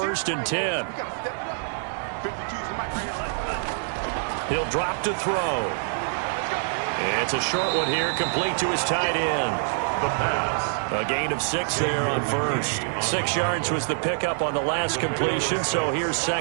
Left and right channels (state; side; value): silent; left; 61 dB below the other